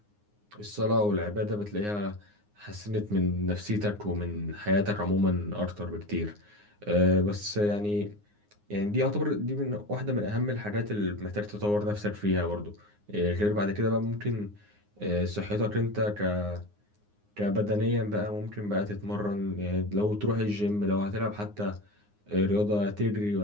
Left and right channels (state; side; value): late; left; 9.7 ms